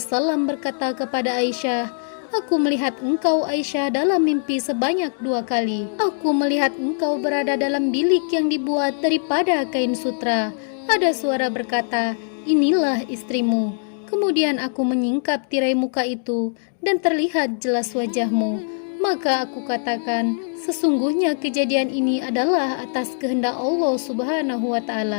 berkata kepada Aisyah, "Aku melihat engkau Aisyah dalam mimpi sebanyak 2 kali. Aku melihat engkau berada dalam bilik yang dibuat daripada kain sutra. Ada suara berkata, inilah istrimu. Kemudian aku menyingkap tirai muka itu dan terlihat jelas wajahmu. Maka aku katakan, sesungguhnya kejadian ini adalah atas kehendak Allah Subhanahu wa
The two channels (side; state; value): right; silent; digital silence